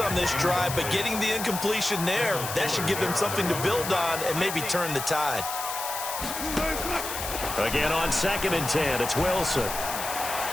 on this drive, but getting the incompletion there, that should give them something to build on and maybe turn the tide. Again on 2nd and 10, it's Wilson.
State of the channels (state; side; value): noise; left; hiss, 6 dB below the sound